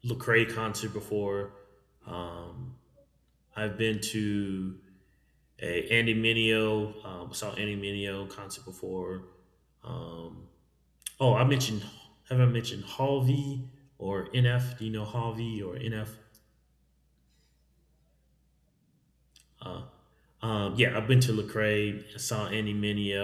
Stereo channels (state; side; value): identical; both; correlation 1.00